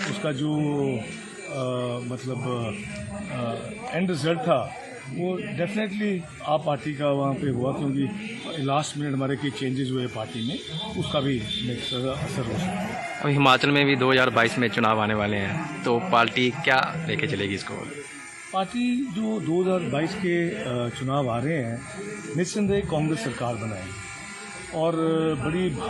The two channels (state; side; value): identical; both; correlation 1.00